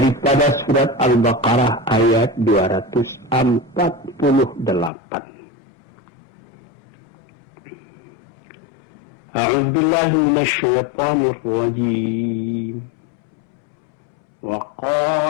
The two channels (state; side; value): drops out; right; at 4.9 s